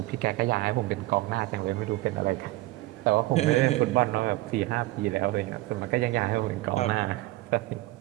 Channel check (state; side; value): quieter; left; 18.7 dB